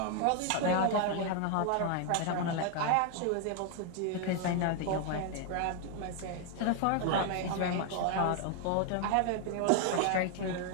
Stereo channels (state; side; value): different; both; correlation 0.00